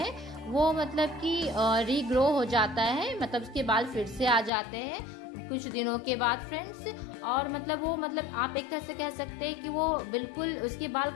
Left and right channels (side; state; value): right; drops out; at 4.5 s